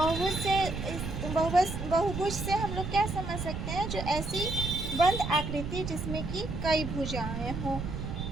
से हम लोग क्या समझ सकते हैं, जो ऐसी बंद आकृति जिसमें कि कई भुजाएं हों।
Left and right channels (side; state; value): right; noise; rumble, 5 dB below the sound